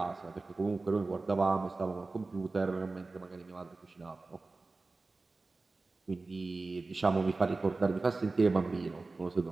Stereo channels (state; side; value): quieter; left; 3.6 dB